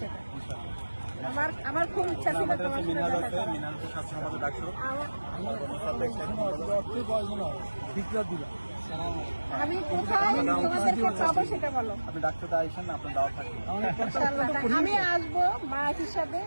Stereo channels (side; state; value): both; inverted; correlation -1.00